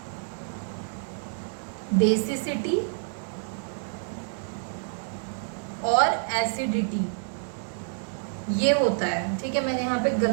बेसिसिटी और एसिडिटी, ये होता है। ठीक है, मैंने यहाँ पे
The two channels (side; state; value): left; silent; digital silence